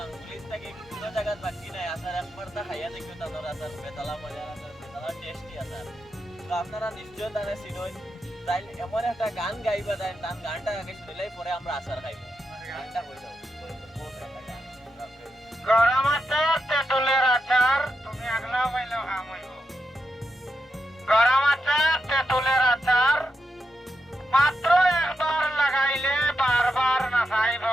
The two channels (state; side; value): normal; both; correlation 0.86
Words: থেকে কোনো জায়গায় বাকি নাই আচার একবার তা খাইয়া দেখিও তাদের আচার বেতালা মজা আচার বেতালা টেস্টি আচার তো আপনারা নিশ্চয় তারা চিনই তাই এমন একটা গান গাইবা তাই তার গানটা আগে শুনলেই পরে আমরা আচার খাইব গানটা কই দাও গরম আচার তেঁতুলের আচার তুমি আগলা পাইলেও হাম হইব গরম আচার তেঁতুলের আচার মাত্র একবার লাগাইলে বারবার না চাইব